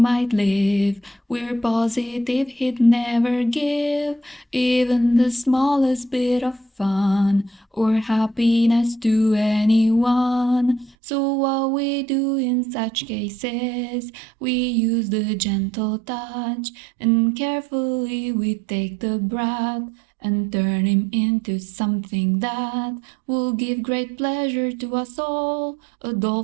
live, we're positive he'd never give even the smallest bit of fun or happiness to anyone. So what we do in such cases, we use the gentle touch, and carefully we take the brat and turn him into something that will give great pleasure to us all. A doll,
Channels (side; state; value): left; drops out; at 11.0 s